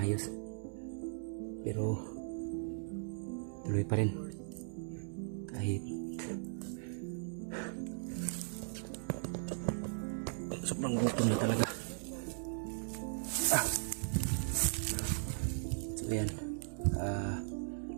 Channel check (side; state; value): left; silent; digital silence